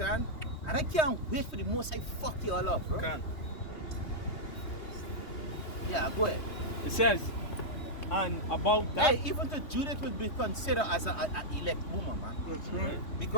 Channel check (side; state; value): right; late; 3.2 ms